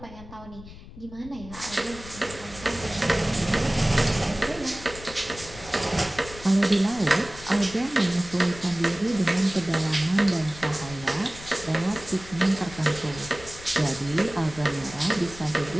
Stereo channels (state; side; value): noise; left; rumble, 16 dB below the sound